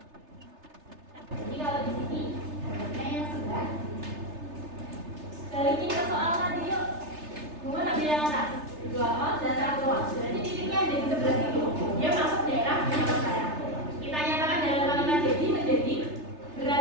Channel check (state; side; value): late; left; 3.3 ms